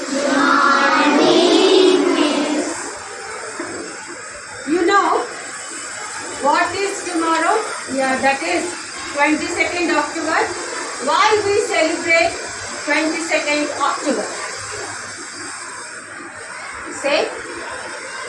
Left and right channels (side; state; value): both; identical; correlation 1.00